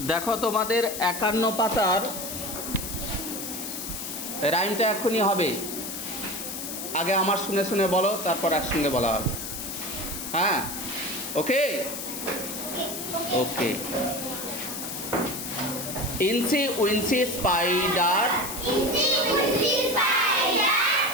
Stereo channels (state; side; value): noise; left; hiss, 6 dB below the sound